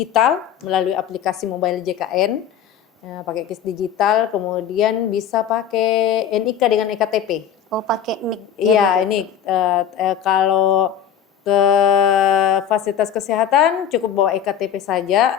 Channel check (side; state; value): right; quieter; 8.9 dB